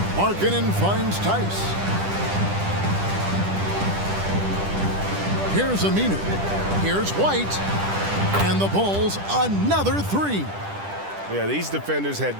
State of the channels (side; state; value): left; late; 10 ms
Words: Markkanen finds Tice. Here's Aminu. Here's White. And the Bulls, another 3. Yeah, these defenders had